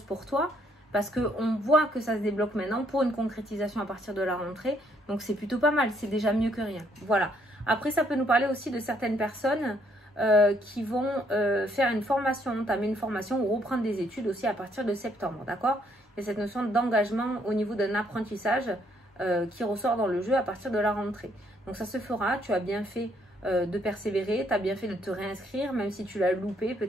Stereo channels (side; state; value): both; normal; correlation 0.69